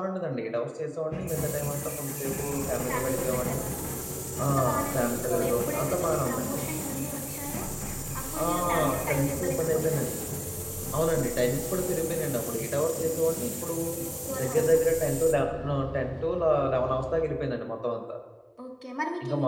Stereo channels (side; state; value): both; identical; correlation 1.00